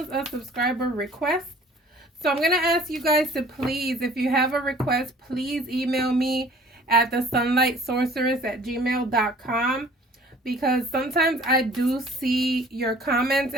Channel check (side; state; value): both; normal; correlation 0.51